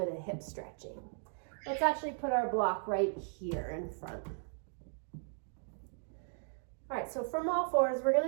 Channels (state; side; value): silent; left; 53 dB below the other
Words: of hip stretching. Let's actually put our block right here in front. All right, so from all fours, we're